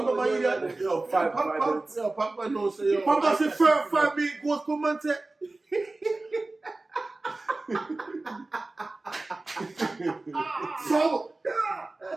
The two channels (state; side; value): quieter; left; 3.1 dB